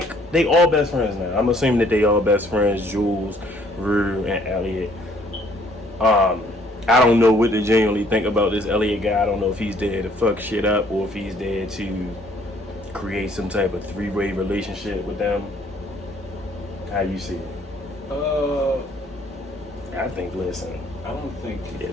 all best friends now. I'm assuming that they all best friends, Jules, Rue, and Elliot. I don't know what to genuinely think about this Elliot guy. I don't know if he's there to fuck shit up or if he's there to create some type of three-way relationship with them. How you see it? I think, listen, I don't think yeah,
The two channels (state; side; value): normal; both; correlation 0.62